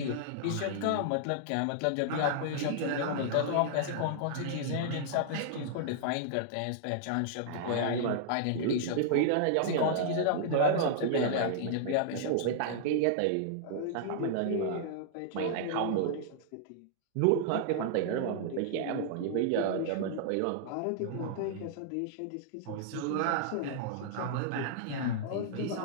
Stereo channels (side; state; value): both; different; correlation -0.01